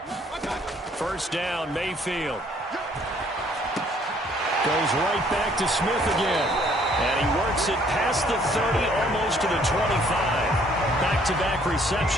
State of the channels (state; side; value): normal; both; correlation 0.62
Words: First down, Mayfield. Goes right back to Smith again. And he works it past the 30, almost to the 25. Back-to-back